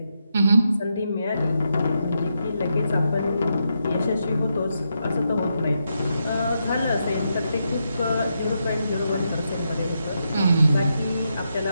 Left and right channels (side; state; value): both; inverted; correlation -0.83